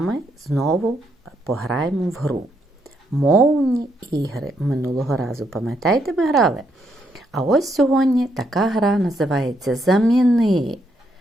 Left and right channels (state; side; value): normal; both; correlation 0.76